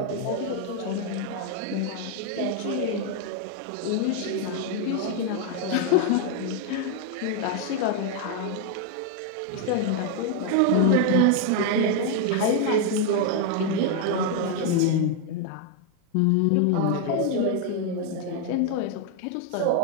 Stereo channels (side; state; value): both; different; correlation 0.01